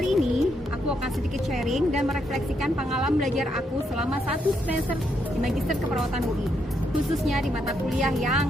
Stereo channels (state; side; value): normal; both; correlation 0.77